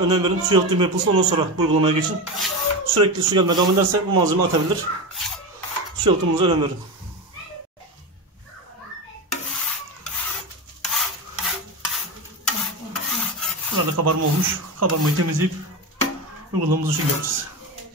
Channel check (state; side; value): normal; both; correlation 0.20